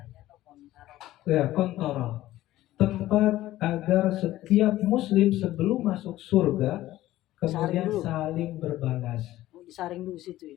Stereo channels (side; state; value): right; quieter; 15.2 dB